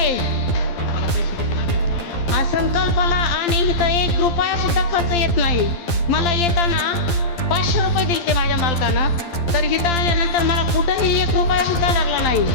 हा संकल्पाला आणि इथं 1 रुपया सुद्धा खर्च येत नाही. मला येताना 500 रुपये दिले माझ्या मालकानं, तर इथं आल्यानंतर मला कुठंही 1 रुपया सुद्धा लागला नाही.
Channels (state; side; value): late; right; 12 ms